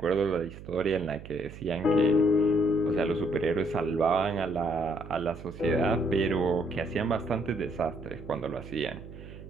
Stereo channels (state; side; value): noise; right; hum, 14 dB below the sound